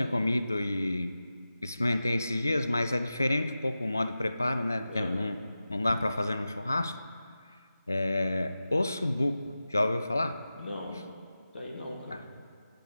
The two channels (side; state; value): both; inverted; correlation -0.94